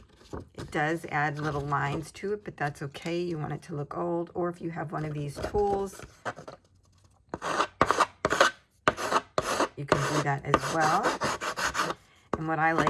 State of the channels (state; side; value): identical; both; correlation 1.00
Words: It does add little lines to it, but that's okay. You want it to look old, or if you have one of these tools, you can do that as well. And what I